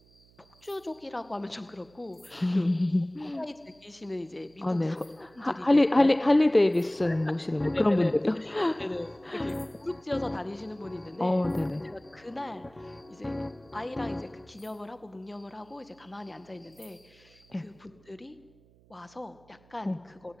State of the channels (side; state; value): right; noise; hum, 29 dB below the sound